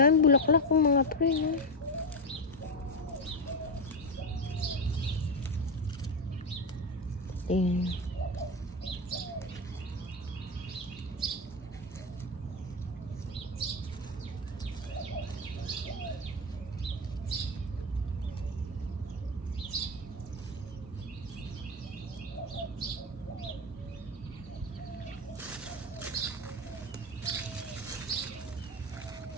bulaklak ng mga pre, no? Tingnan.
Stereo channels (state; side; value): normal; both; correlation 0.13